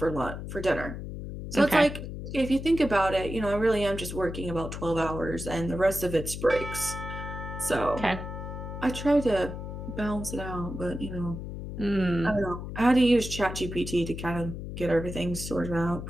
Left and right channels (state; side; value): noise; left; hum, 8 dB below the sound